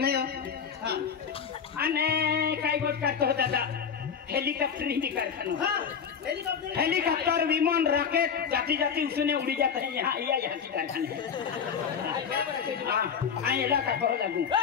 हो हाँ अने काय गोट का तो दादा हेलीकॉप्टर ही कारखाना हाँ हेलीकॉप्टर विमान रॉकेट जाती जाती उसने उड़ी जाते हैं यहाँ यहाँ की कारखाने हाँ इलाका बहुत लागू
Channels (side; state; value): right; quieter; 7.0 dB